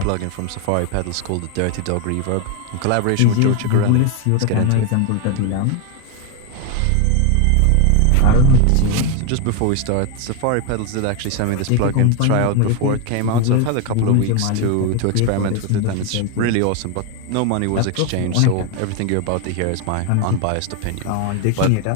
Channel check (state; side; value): different; both; correlation 0.01